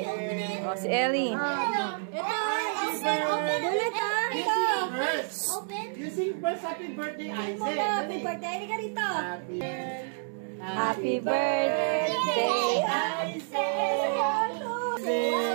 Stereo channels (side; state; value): left; silent; digital silence